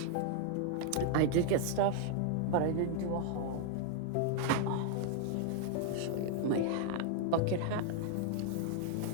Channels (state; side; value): different; both; correlation 0.00